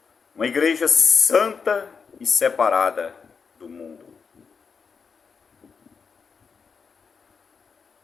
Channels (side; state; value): right; quieter; 5.6 dB